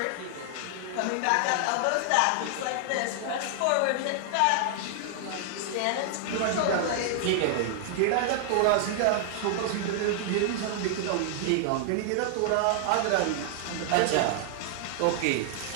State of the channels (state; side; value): different; both; correlation -0.01